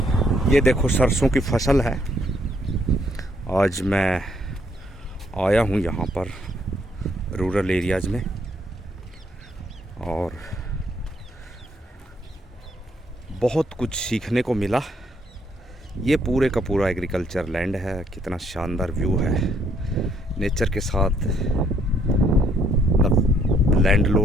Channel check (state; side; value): normal; both; correlation 0.69